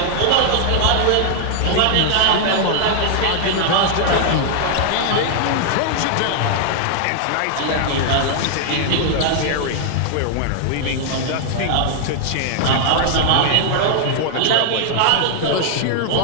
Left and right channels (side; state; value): both; different; correlation -0.01